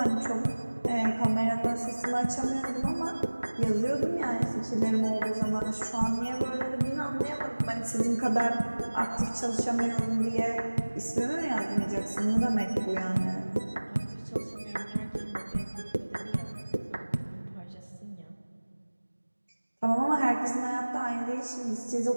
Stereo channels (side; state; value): both; inverted; correlation -1.00